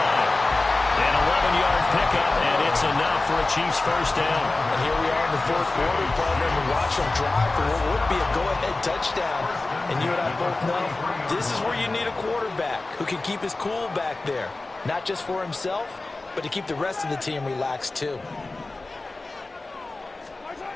An 11-yard pickup, and it's enough for a Chiefs 1st down. And here we are in the 4th quarter, partner, and watch them drive for what would be a go-ahead touchdown. And you and I both know this is where you need a quarterback who can keep his cool back there. Not just for himself, but to keep the rest of the team relaxed too.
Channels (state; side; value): quieter; right; 3.2 dB